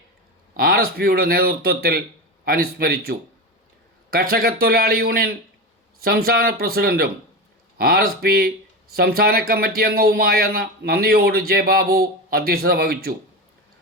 RSPയുടെ നേതൃത്വത്തിൽ അനുസ്മരിച്ചു. കർഷകത്തൊഴിലാളി യൂണിയൻ സംസ്ഥാന പ്രസിഡന്റും RSP സംസ്ഥാന കമ്മിറ്റി അംഗവുമായ നന്ദിയോട് ജെ ബാബു അധ്യക്ഷത വഹിച്ചു.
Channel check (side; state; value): both; normal; correlation 0.21